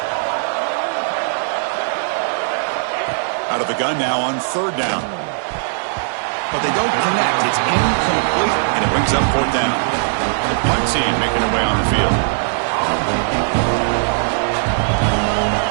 Out of the gun now on third down. But they don't connect. It's incomplete, and it brings up fourth down. The punt team making their way on the field.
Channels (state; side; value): silent; left; 67 dB below the other